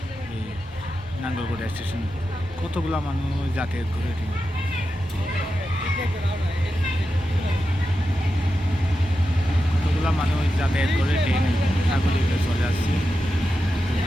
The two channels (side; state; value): both; normal; correlation 0.90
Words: এই নাঙ্গলকোটা স্টেশন কতগুলা মানুষ যাতায়াত করে ঠিক কতগুলা মানুষ যাতায়াত করে ট্রেনে সাগরিকে চলে আসছে।